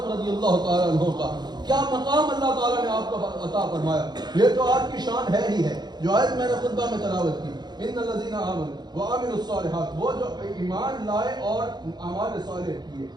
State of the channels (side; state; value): left; late; 0.20 ms